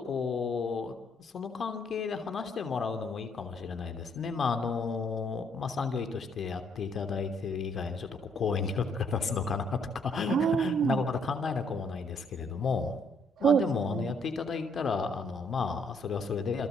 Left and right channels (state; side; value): normal; both; correlation 0.68